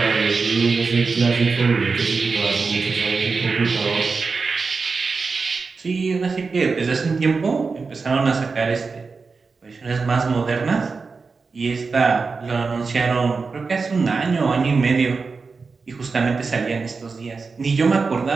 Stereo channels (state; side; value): quieter; left; 4.6 dB